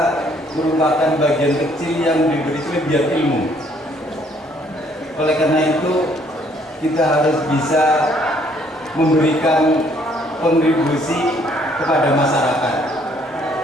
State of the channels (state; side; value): normal; both; correlation 0.64